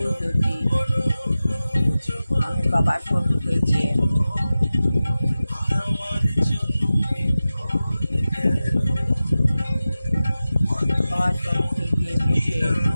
জ্যোতি। আমি বাবার শক্তিকে গিয়ে বাবার শক্তি গিয়ে বসে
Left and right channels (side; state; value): both; inverted; correlation -0.95